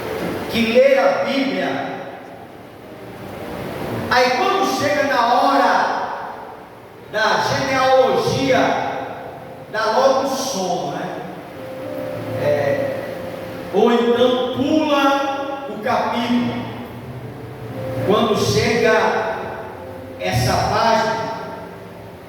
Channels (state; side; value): identical; both; correlation 1.00